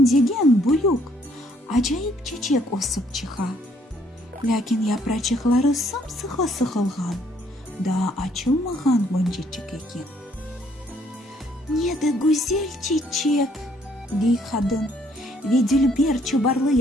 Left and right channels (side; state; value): both; normal; correlation 0.66